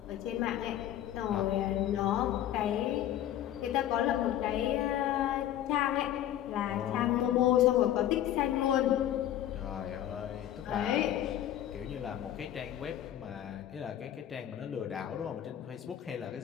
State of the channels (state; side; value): quieter; right; 11.8 dB